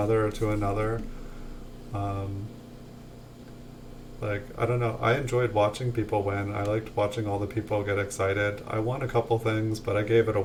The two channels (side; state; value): both; identical; correlation 1.00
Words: to another. Like I don't know, I enjoyed watching people win. I liked watching all the people get excited. I won a couple things, but I gave it